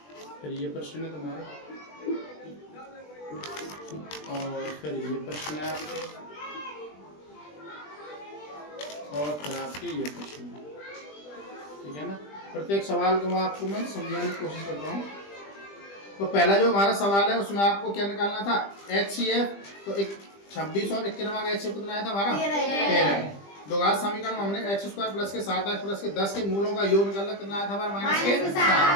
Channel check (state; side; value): late; right; 20 ms